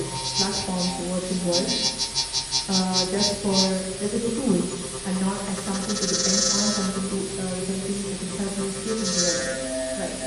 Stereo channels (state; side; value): identical; both; correlation 1.00